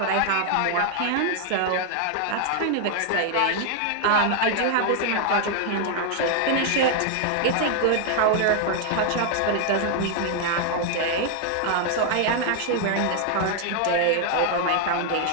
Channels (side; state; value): both; different; correlation 0.00